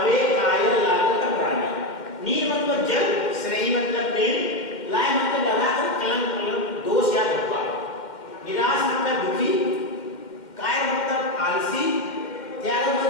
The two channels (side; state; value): right; late; 2.1 ms